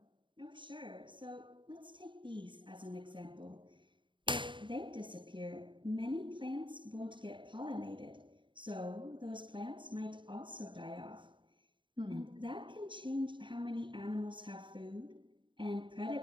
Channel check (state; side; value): late; left; 0.23 ms